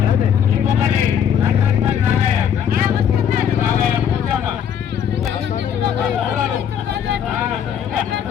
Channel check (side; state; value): right; quieter; 8.6 dB